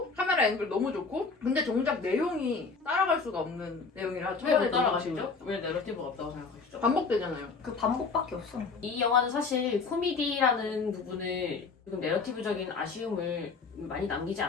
카메라 앵글 너무 좋고 근데 정작 내용이 따라갈 수가 없는 내용이라 왜 못 따라가시죠? 왜 내러티브가 없다고 생각하시죠? 반복되잖아요. 그 반복밖에 없어. 이 영화는 사실 코미디라는 부분을 조금 내러티브적인 아쉬움을 많이 남기지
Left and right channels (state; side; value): quieter; right; 4.6 dB